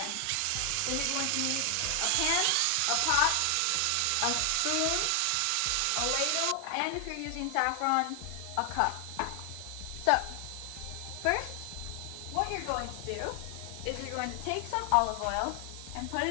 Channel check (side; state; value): both; different; correlation 0.00